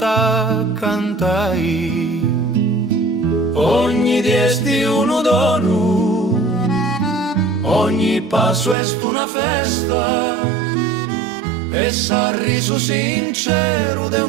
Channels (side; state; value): left; drops out; at 8.8 s